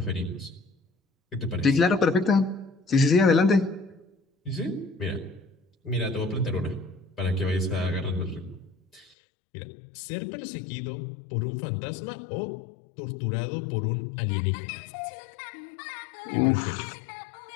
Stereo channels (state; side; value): drops out; right; at 9.1 s